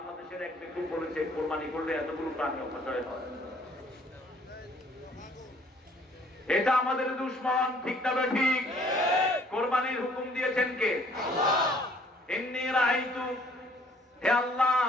এক ব্যক্তি বলেছে কোরবানি করলে এতগুলো প্রাণী অপচয় হয়, এটা আমাদের দুশ্মন। ঠিক না ঠিক? কোরবানির হুকুম দিয়েছেন কে? ইন্নী রাআইতু, হে আল্লাহ,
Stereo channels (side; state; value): both; normal; correlation 0.59